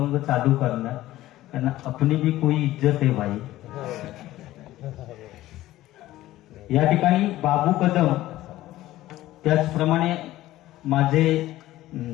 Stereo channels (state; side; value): quieter; right; 15.6 dB